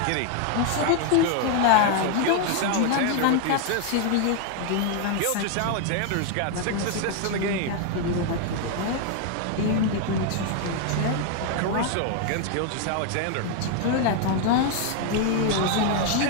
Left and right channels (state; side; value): different; both; correlation 0.00